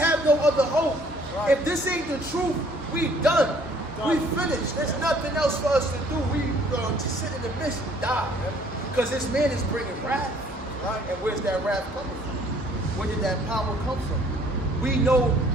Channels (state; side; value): normal; both; correlation 0.59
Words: no other hope. Right. If this ain't the truth, we done. We finished. There's nothing else for us to do. We to sit in the midst and die. Because this man is bringing wrath. Right? And where's that wrath coming from? Where did that power come from? We know